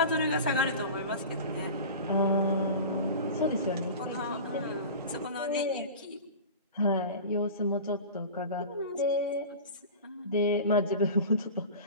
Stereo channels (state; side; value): inverted; both; correlation -0.34